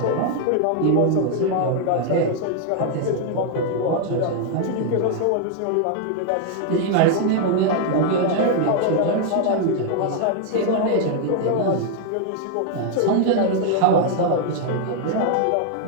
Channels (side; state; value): both; different; correlation 0.00